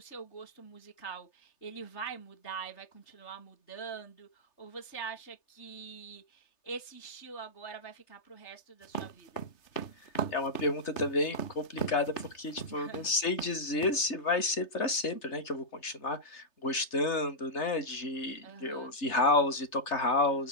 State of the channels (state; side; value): late; right; 3.3 ms